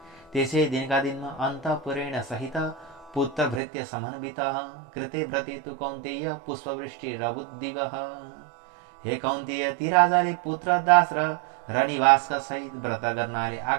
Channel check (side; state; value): left; drops out; at 3.6 s